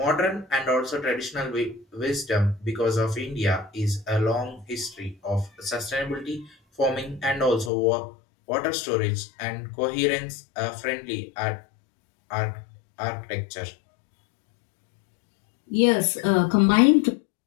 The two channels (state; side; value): drops out; right; at 7.7 s